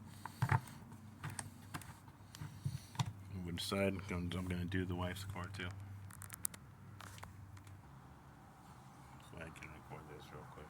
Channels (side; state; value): both; identical; correlation 1.00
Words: We decide I'm going to do the wife's car too. So I can record this real quick.